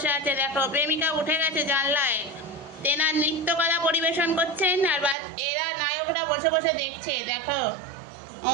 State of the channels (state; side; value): drops out; left; at 5.2 s